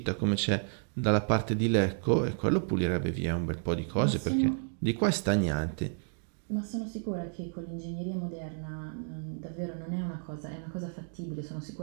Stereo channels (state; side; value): silent; left; 57 dB below the other